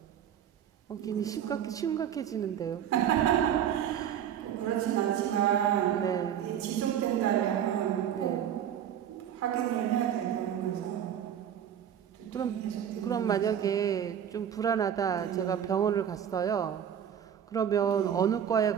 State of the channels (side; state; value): left; quieter; 9.4 dB